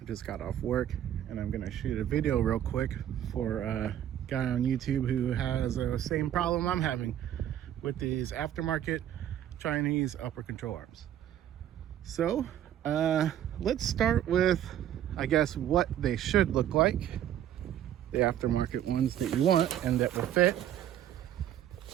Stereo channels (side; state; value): left; quieter; 11.1 dB